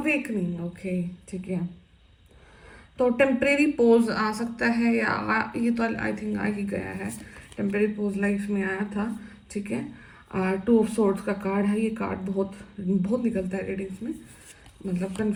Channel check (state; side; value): identical; both; correlation 1.00